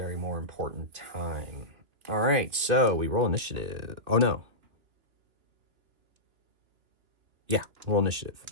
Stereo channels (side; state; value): left; late; 3.1 ms